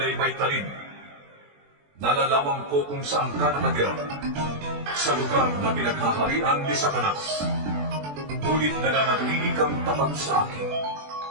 may talim. Nalalaman ko kung saan ka nakatira, sa lugar na pinaghaharian ni Satanas. Ngunit nananatili kang tapat sa akin.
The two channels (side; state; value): left; late; 21 ms